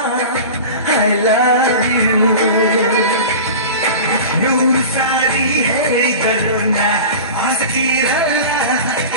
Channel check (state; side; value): inverted; both; correlation -0.33